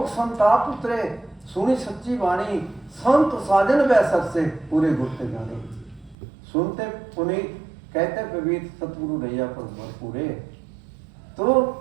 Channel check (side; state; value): left; drops out; at 6.2 s